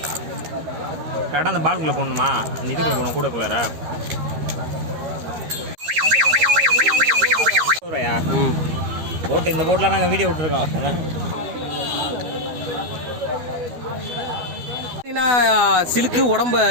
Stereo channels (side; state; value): left; late; 13 ms